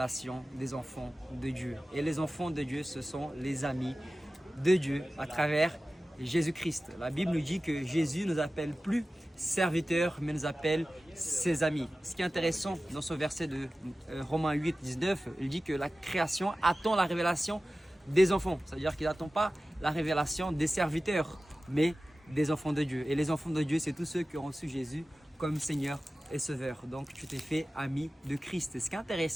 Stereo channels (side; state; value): both; normal; correlation 0.95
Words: des enfants de Dieu. Et les enfants de Dieu, ce sont les amis de Dieu à travers Jésus-Christ. La Bible nous dit que Jésus ne nous appelle plus serviteurs, mais nous appelle ses amis. Ce qui est intéressant dans ce verset de Romains 8, 19, il dit que la création attend la révélation des enfants. C'est-à-dire qu'il n'attend pas la révélation des serviteurs, mais des enfants de Dieu. Et les enfants de Dieu, c'est tous ceux qui ont reçu Jésus comme Seigneur et Sauveur. Donc, tu t'es fait ami de Christ. Et ce qui est